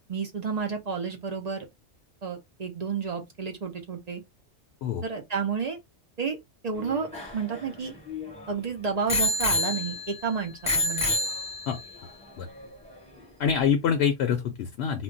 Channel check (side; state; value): both; normal; correlation -0.15